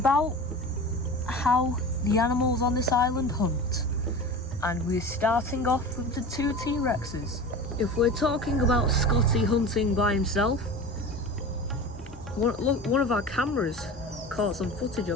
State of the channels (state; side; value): normal; both; correlation 0.33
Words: how the animals on this island hunt, and we're starting off with the 2 T-Rexes. If we're talking about Scotty hunting by himself, one of our cameras caught some footage